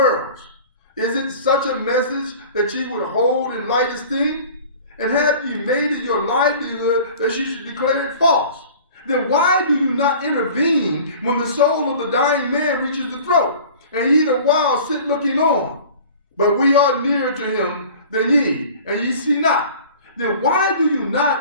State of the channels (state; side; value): inverted; both; correlation -0.43